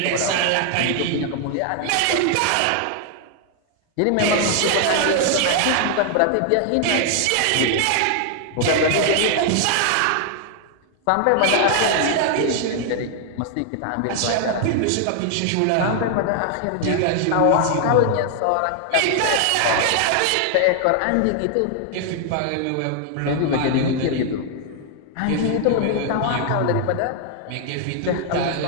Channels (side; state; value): both; different; correlation 0.00